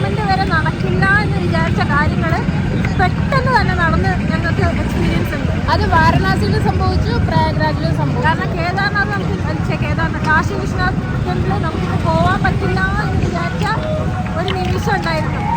വരെ നടക്കില്ല എന്ന് വിചാരിച്ച കാര്യങ്ങൾ പെട്ടെന്ന് തന്നെ നടന്ന് ഞങ്ങൾക്ക് എക്സ്പീരിയൻസ് ഉണ്ട്. അത് വാരണാസിയിലും സംഭവിച്ചു, പ്രയാഗ്രാജിലും സംഭവിച്ചു. കാരണം കേദാർനാഥ് കാശി വിശ്വനാഥ് ടെമ്പിളിൽ നമുക്കിത് പോകാൻ പറ്റില്ല എന്ന് വിചാരിച്ച ഒരു നിമിഷം ഉണ്ടായിരുന്നു.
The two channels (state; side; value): identical; both; correlation 1.00